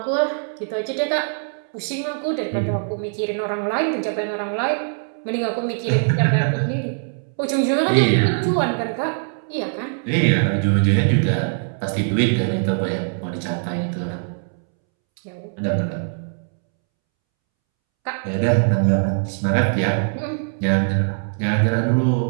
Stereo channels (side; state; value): left; silent; 64 dB below the other